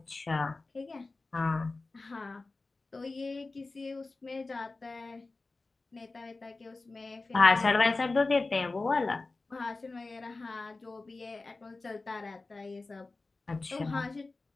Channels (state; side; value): quieter; right; 3.5 dB